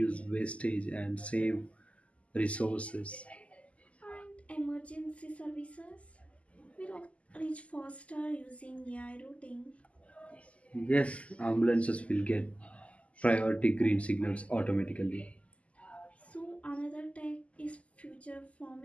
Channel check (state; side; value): late; right; 0.064 ms